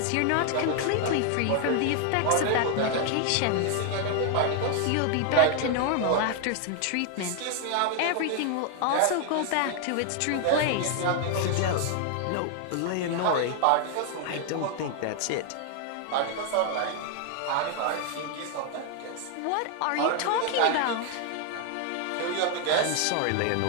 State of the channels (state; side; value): different; both; correlation 0.00